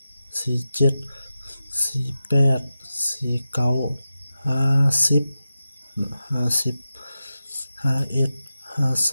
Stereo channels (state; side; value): inverted; both; correlation -0.92